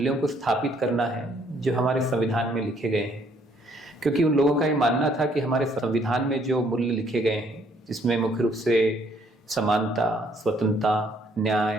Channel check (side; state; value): both; normal; correlation 0.66